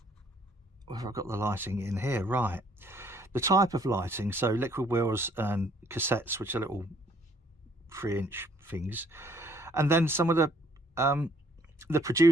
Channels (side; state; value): both; normal; correlation 0.63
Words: I've got the lighting in here right. The type of lighting, so liquid wheels and cassettes, which are little 3-inch things, and then some of the the